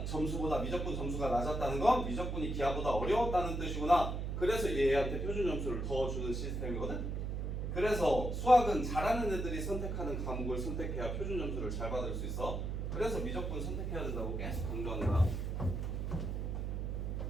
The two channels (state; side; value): noise; right; hum, 2 dB below the sound